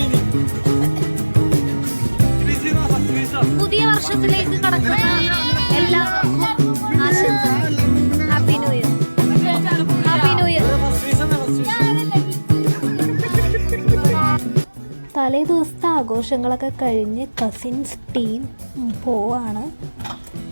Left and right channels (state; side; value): inverted; both; correlation -1.00